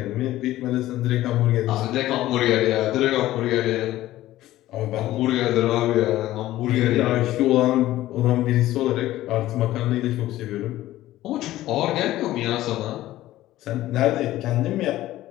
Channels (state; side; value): quieter; right; 15.2 dB